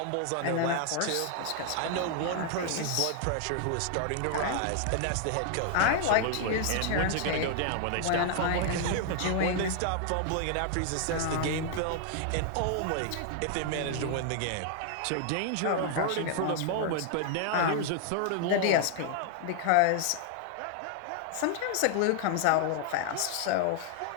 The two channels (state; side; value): different; both; correlation 0.00